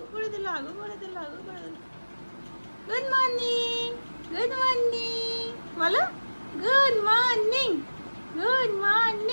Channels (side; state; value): both; inverted; correlation -1.00